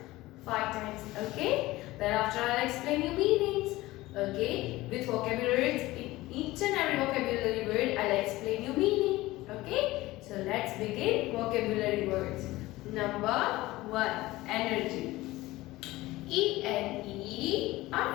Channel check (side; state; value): right; quieter; 18.5 dB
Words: 5 times, okay? Thereafter I'll explain you meanings, okay? With vocabulary words, each and every vocabulary word I'll explain you meaning, okay? So let's begin vocabulary words. Number 1, energy. E-N-E-R-G-Y,